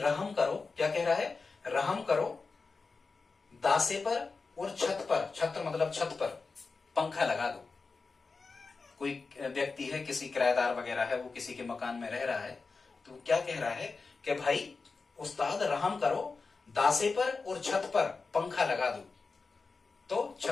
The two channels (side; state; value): right; quieter; 4.3 dB